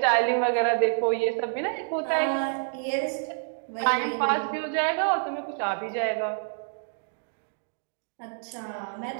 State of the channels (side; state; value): left; silent; digital silence